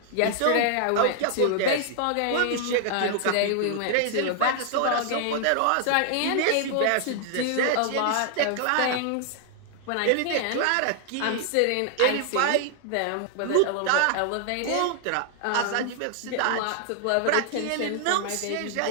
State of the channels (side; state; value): both; different; correlation 0.00